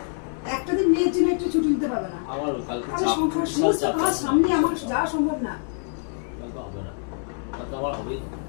একটা দিন মেয়ের জন্য একটু ছুটি নিতে পারবে না? আমার কালকে আমি চাপ, সংসার বিশাল সমস্ত চাপ কাজ আছে। সামনে আমার যাওয়া সম্ভব না। কালকে হবে না, কালকে আমার হবেই না।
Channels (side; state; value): right; silent; digital silence